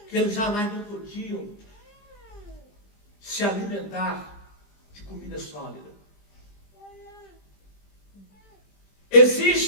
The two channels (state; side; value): late; right; 20 ms